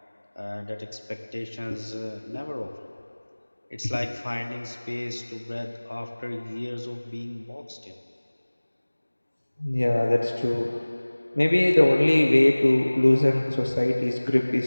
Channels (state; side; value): inverted; both; correlation -1.00